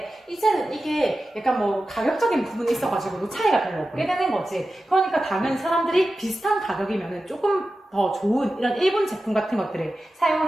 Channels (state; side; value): normal; both; correlation 0.93